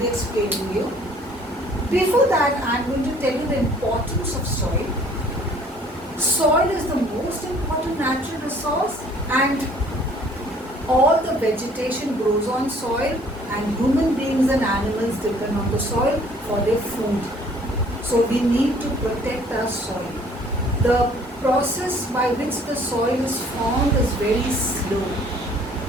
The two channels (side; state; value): both; normal; correlation 0.57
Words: explaining you. Before that, I'm going to tell you the importance of soil. Soil is the most important natural resource and all the vegetation grows on soil and human beings and animals depend on the soil for their food. So we need to protect our soil. The process by which the soil is formed is very slow.